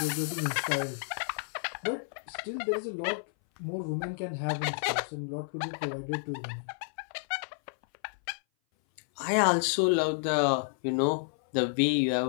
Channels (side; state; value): right; silent; 57 dB below the other